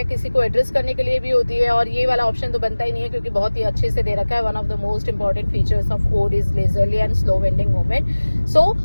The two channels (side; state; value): both; inverted; correlation -1.00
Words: किसी को एड्रेस करने के लिए भी होती है, और ये वाला ऑप्शन तो बनता ही नहीं है क्योंकि बहुत ही अच्छे से दे रखा है। One of the most important features of ode is leisurely and slow winding movement. So